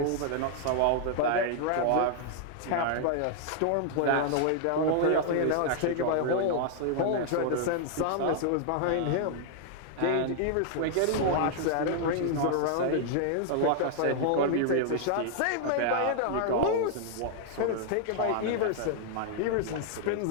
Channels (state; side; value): different; both; correlation 0.00